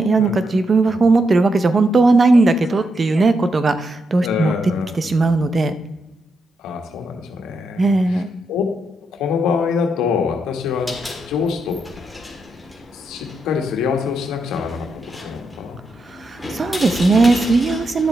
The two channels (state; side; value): normal; both; correlation 0.83